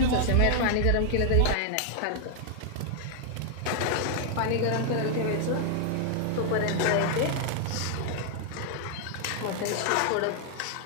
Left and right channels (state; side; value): different; both; correlation 0.00